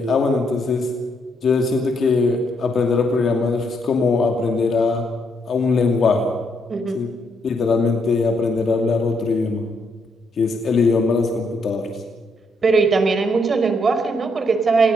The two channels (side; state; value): both; normal; correlation 0.75